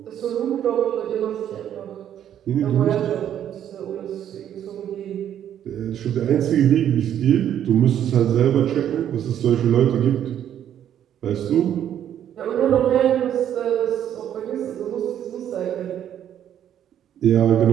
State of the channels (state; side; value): quieter; left; 10.2 dB